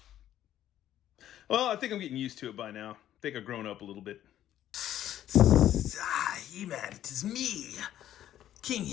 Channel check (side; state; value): right; quieter; 12.0 dB